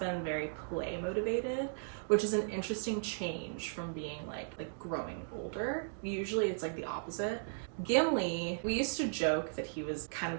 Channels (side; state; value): left; silent; digital silence